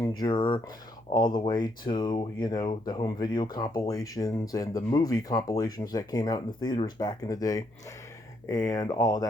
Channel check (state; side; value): noise; left; hum, 29 dB below the sound